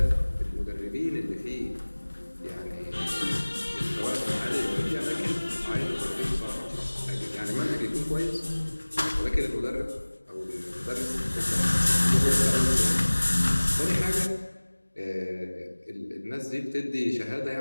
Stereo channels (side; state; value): both; inverted; correlation -1.00